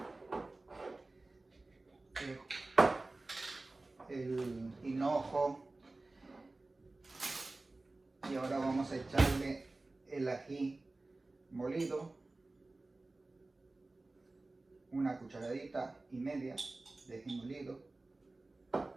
el hinojo. Y ahora vamos a echarle el ají molido, una cucharadita y media de ají molido.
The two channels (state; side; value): quieter; left; 3.1 dB